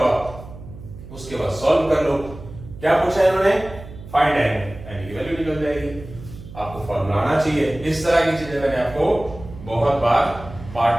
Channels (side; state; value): right; noise; hum, 15 dB below the sound